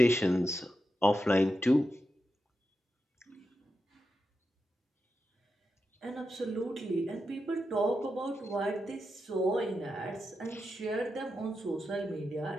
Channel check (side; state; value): both; normal; correlation 0.88